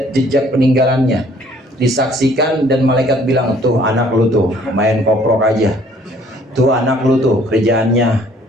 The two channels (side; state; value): both; normal; correlation 0.59